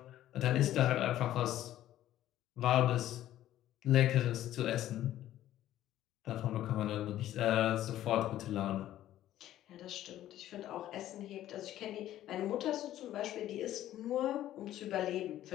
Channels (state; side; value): quieter; right; 13.1 dB